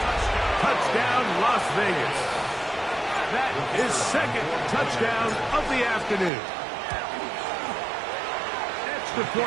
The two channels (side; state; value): left; drops out; at 6.3 s